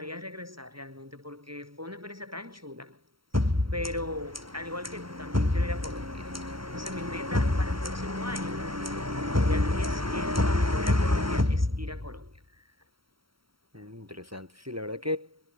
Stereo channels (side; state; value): left; late; 0.74 ms